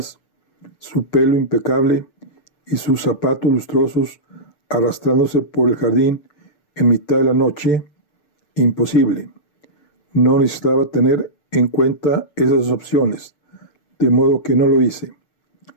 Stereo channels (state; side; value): late; right; 6.8 ms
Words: su pelo impecable y sus zapatos lustrosos arrastrándose por el jardín en mitad de la noche. Imposible. No necesitaba tener en cuenta esas opciones, de modo que no lo hice.